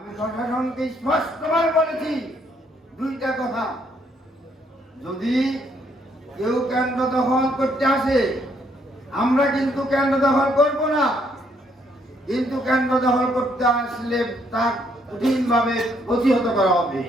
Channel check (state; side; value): normal; both; correlation 0.70